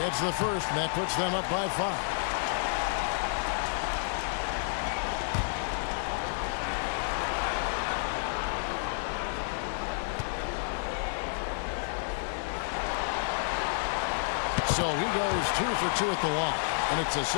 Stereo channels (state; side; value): silent; right; digital silence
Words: the first, and that puts them up by 5. So he goes 2 for 2 at the line, and it's a